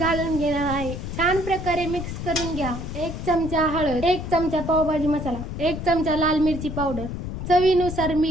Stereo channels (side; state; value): left; noise; rumble, 6 dB below the sound